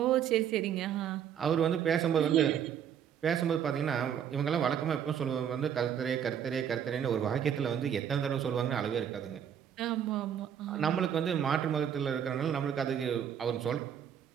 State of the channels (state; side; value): quieter; left; 8.8 dB